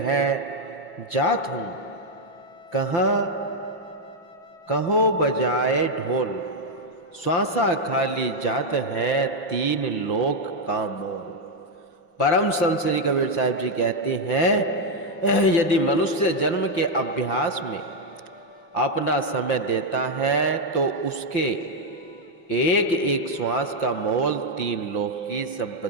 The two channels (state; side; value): late; right; 5.8 ms